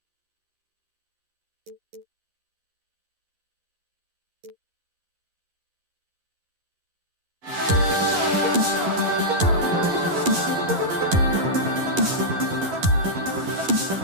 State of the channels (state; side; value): late; left; 11 ms